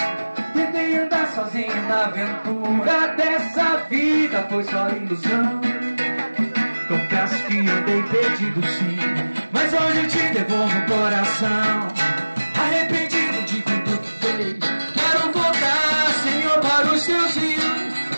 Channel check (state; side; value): inverted; both; correlation -1.00